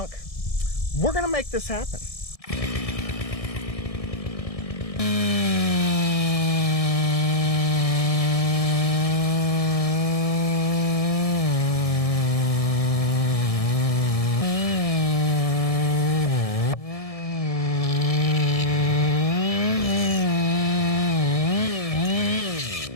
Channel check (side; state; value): right; late; 1.7 ms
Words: We're gonna make this happen.